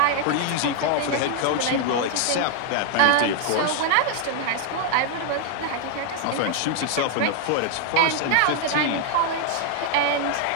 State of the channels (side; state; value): both; different; correlation 0.00